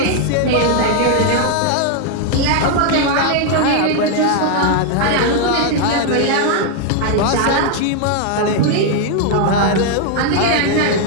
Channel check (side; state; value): both; different; correlation 0.00